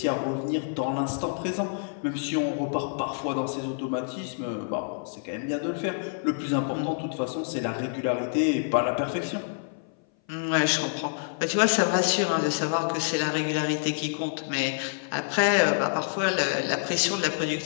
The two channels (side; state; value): right; silent; 58 dB below the other